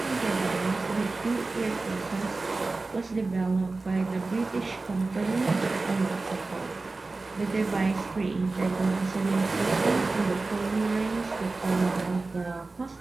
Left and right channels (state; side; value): quieter; left; 3.5 dB